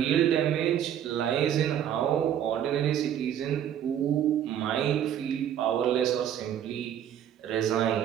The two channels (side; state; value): left; quieter; 10.0 dB